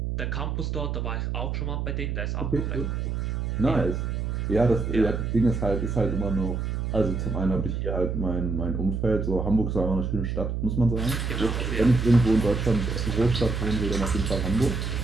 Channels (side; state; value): right; noise; hum, 2 dB below the sound